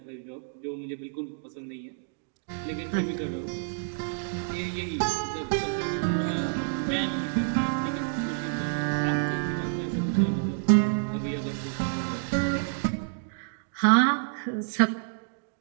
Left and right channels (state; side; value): silent; left; digital silence